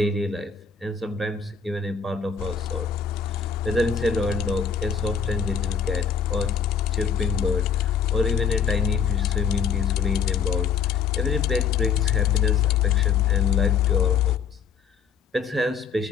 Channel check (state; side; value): quieter; right; 6.6 dB